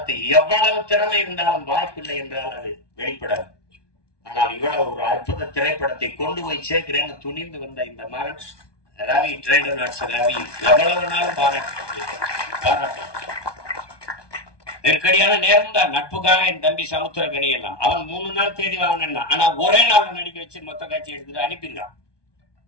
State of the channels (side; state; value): right; late; 1.2 ms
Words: எவ்வளவு திறமை இருந்தாலும் வாய்ப்பில்லை என்றால் அது வெளிப்படாது. ஆனால் இவ்வளவு ஒரு அற்புத திரைப்படத்தை கொண்டு போய் சேர்க்கிறேன்னு துணிந்து வந்த இந்த மகன் ரவி, ட்ரைடர் ரவி, எவ்வளவு நாளும் பாராட்ட. நெருக்கடியான நேரம் தான். நட்புக்காக என் தம்பி சமுத்திரக்கனி எல்லாம் அவன் 3 நாள் தேதி வாங்கினா, ஆனா ஒரே நாள் நடிக்க வச்சு மொத்த காட்சி எடுத்துட்டு அனுப்பிடுறான்.